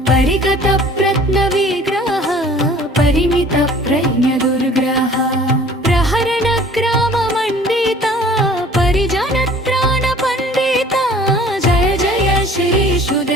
परिगत प्रत्न विग्रह परिमित प्रज्ञ दुर्ग्रह प्रहरण ग्राम मण्डित परिजन त्राण पण्डित जय जय श्री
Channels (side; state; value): both; normal; correlation 0.50